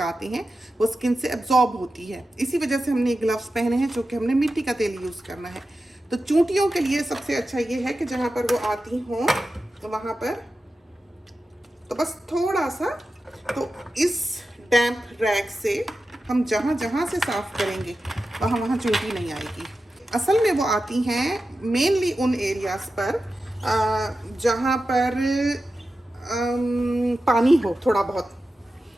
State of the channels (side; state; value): both; normal; correlation 0.92